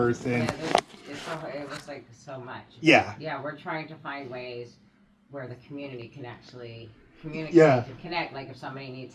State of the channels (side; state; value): both; identical; correlation 1.00